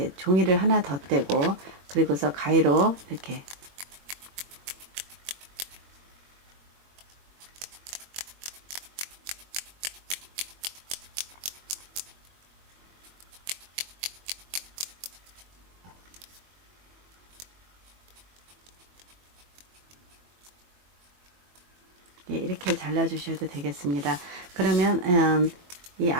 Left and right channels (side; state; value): left; late; 22 ms